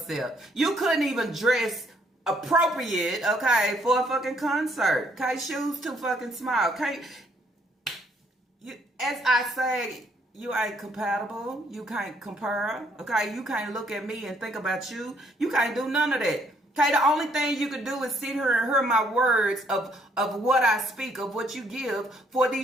You couldn't even dress appropriate, okay, for a fucking concert. Okay, shoes too fucking small. Okay, as I say, you ain't compatible. You can't compare. Okay, you can't look at me and think about you. You can't do none of that. Okay, the only thing you can do is sit here and hear my words of what I speak, of what you give for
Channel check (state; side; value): normal; both; correlation 0.68